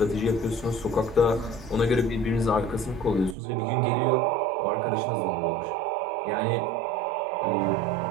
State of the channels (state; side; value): drops out; left; at 3.4 s